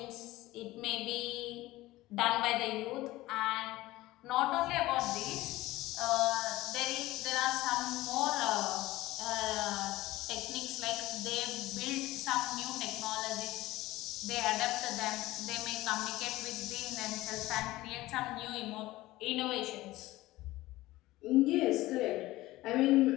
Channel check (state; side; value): quieter; right; 17.8 dB